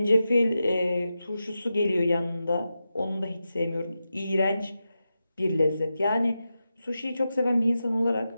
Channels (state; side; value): inverted; both; correlation -0.91